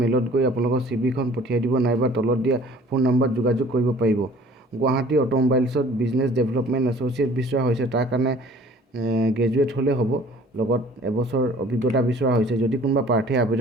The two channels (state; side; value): normal; both; correlation 0.51